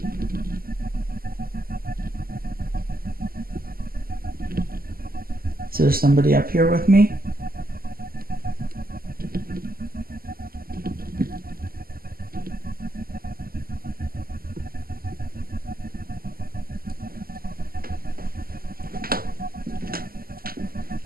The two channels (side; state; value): left; late; 0.42 ms